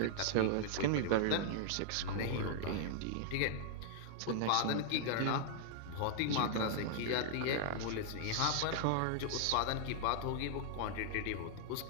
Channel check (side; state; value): both; different; correlation -0.01